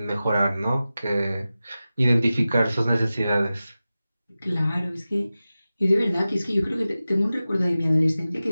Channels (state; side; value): inverted; both; correlation -0.95